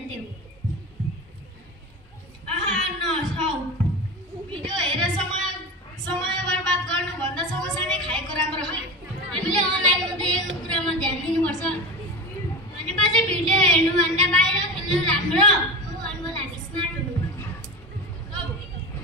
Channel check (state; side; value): normal; both; correlation 0.26